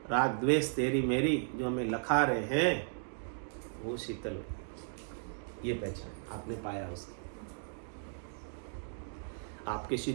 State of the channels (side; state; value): left; silent; digital silence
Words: राग द्वेष तेरी मेरी, जो हमें लखा रहे हैं, वो शीतल, ये पहचान आपने पाया उसकी। आपके